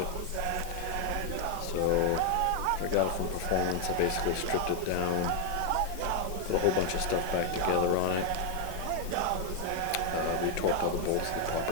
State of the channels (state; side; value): different; both; correlation 0.01